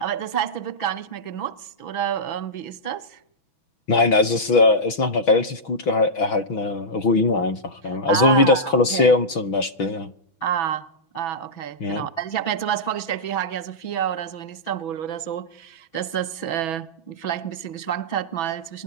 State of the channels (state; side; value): late; right; 6.1 ms